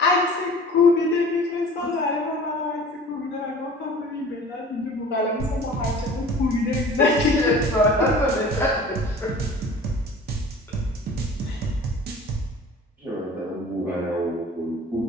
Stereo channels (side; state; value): both; normal; correlation 0.44